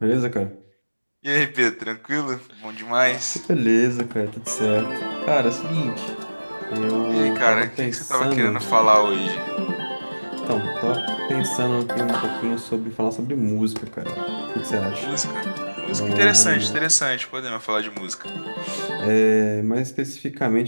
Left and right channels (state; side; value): inverted; both; correlation -1.00